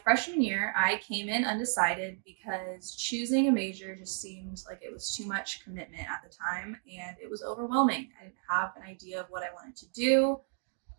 freshman year, I came in undecided because choosing a major just seemed like it was too much commitment at the time, and it was overwhelming. I didn't have an idea of what I wanted to do.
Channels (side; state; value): left; silent; 56 dB below the other